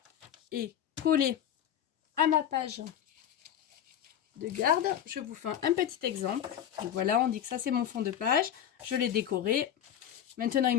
est collée à ma page de garde. Je vous fais un petit exemple. Donc, voilà, on dit que ça, c'est mon fond de page. Je l'ai décoré. Maintenant, il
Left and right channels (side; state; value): right; quieter; 9.9 dB